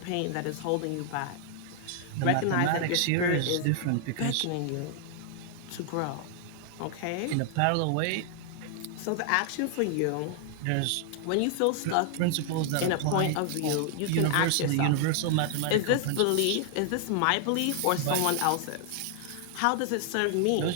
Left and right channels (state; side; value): different; both; correlation 0.00